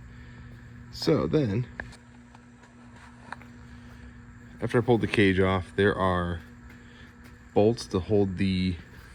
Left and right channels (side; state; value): both; identical; correlation 1.00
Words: So then, after I pulled the cage off, there are bolts to hold the